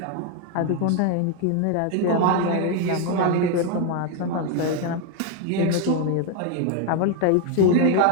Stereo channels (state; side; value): different; both; correlation 0.01